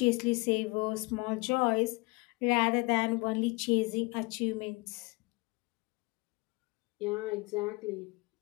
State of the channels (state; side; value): quieter; right; 25.9 dB